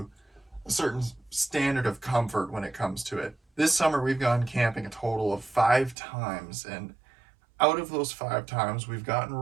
a certain standard of comfort when it comes to it. This summer we've gone camping a total of 5 times, and out of those 5 times we've gotten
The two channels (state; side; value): drops out; left; at 6.0 s